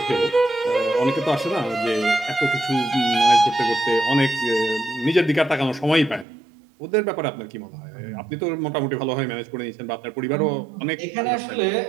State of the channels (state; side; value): drops out; left; at 6.2 s